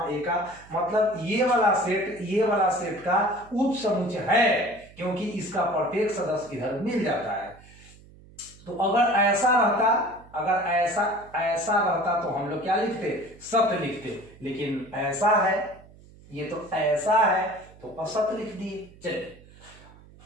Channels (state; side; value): noise; right; hum, 23 dB below the sound